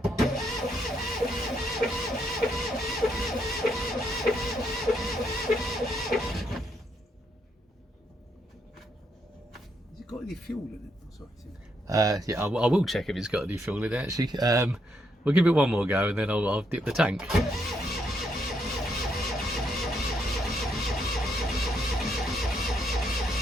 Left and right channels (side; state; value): both; normal; correlation 0.76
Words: Has it got any fuel in it? Oh, sorry. Yeah, I will check if it's got any fuel in it, actually. We'll give it one more go and then I'll dip the tank.